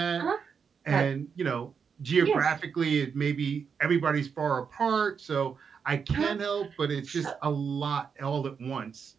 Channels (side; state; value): left; quieter; 6.4 dB